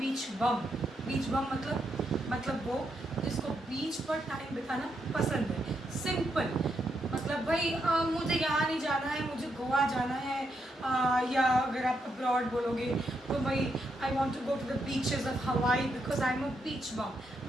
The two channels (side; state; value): both; normal; correlation 0.80